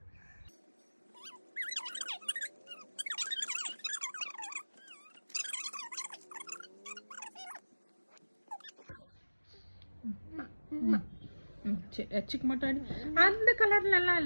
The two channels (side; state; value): both; inverted; correlation -1.00